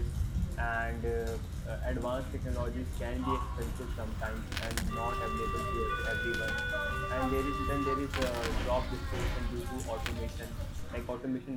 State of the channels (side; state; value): both; identical; correlation 1.00